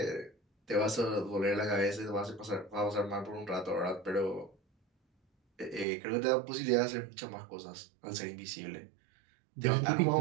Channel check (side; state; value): left; drops out; at 5.9 s